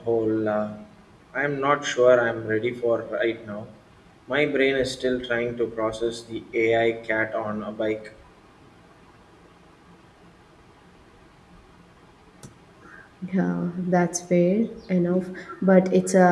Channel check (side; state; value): both; identical; correlation 1.00